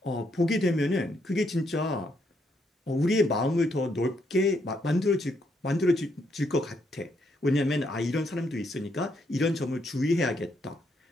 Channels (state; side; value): normal; both; correlation 0.75